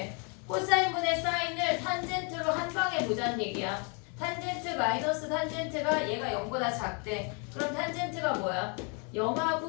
코사인분의 사인을 탄젠트로 한 방에 보자는 얘기야. 탄젠트 마이너스 탄젠트가 얘가 0보다 작대. 그럼 탄젠트가 뭐야?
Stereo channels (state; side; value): quieter; right; 36.2 dB